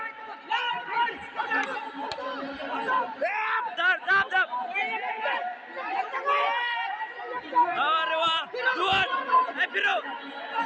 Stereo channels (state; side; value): identical; both; correlation 1.00